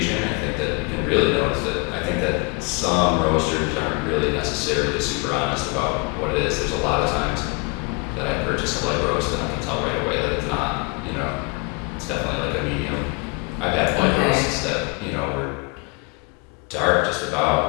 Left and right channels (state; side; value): quieter; right; 30.1 dB